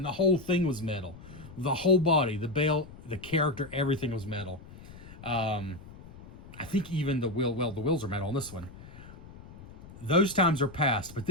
the whole thing was metal. The whole body, the belt, the character, everything was metal. I think even the wheel, well, the wheels are metal on this one. Those times are past, but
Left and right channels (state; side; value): noise; left; rumble, 17 dB below the sound